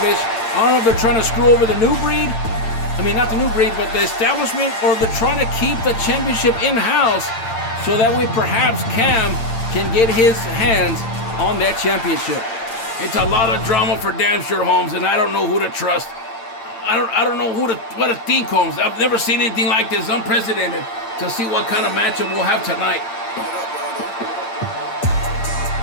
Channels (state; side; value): late; right; 8.8 ms